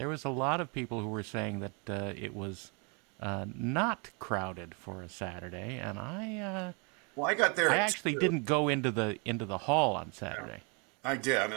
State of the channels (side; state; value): left; quieter; 33.8 dB